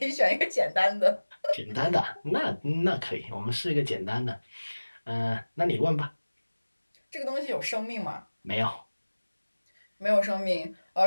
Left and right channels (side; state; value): both; inverted; correlation -1.00